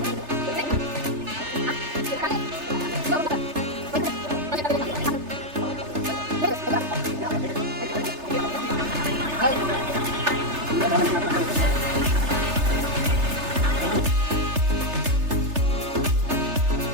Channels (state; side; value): late; left; 3.3 ms